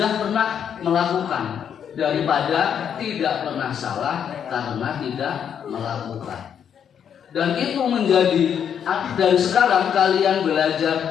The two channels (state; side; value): quieter; right; 8.3 dB